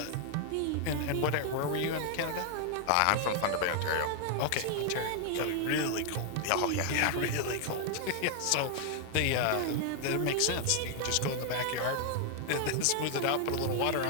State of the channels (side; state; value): both; different; correlation 0.00